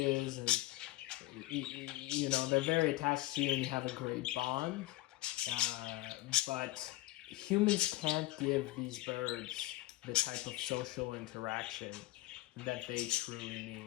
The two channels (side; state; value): right; quieter; 18.2 dB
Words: and they're very attached to you, and you have a great bond. But humans can't give these birds the type of social interaction that they truly